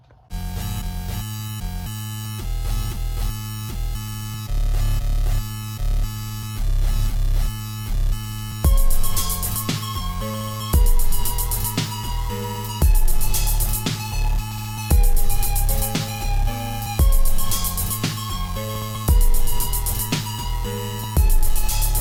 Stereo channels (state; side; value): identical; both; correlation 1.00